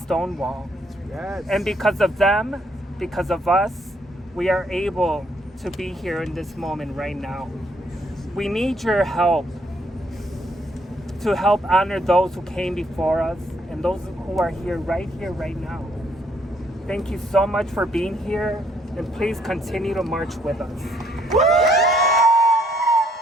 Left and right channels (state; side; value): normal; both; correlation 0.69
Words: Yes. And because of them, because of us, we are able to be here in this moment right now. We need your help to help honor those who came before us and those who are here, right now. Thank you so much for being here, and please continue to march with us.